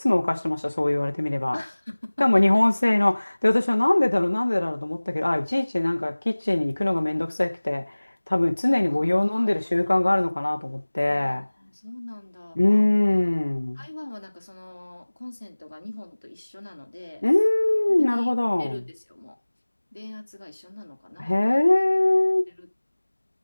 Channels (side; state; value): both; inverted; correlation -1.00